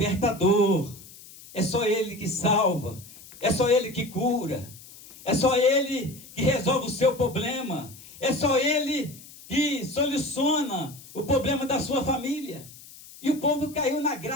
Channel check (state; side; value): noise; left; hiss, 19 dB below the sound